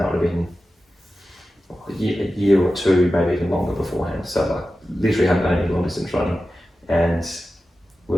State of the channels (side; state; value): both; normal; correlation 0.93